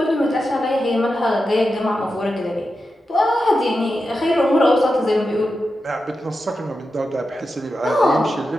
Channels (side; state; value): both; normal; correlation 0.90